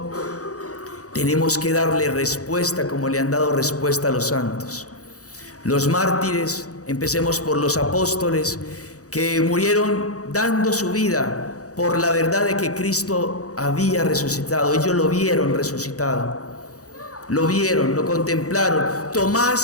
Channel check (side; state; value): right; late; 0.66 ms